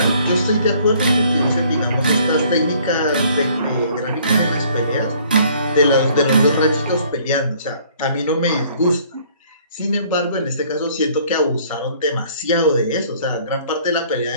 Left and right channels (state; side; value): inverted; both; correlation -0.58